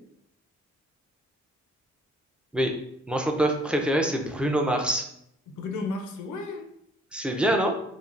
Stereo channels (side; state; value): both; normal; correlation 0.60